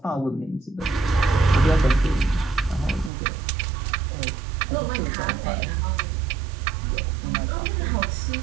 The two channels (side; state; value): left; drops out; at 3.1 s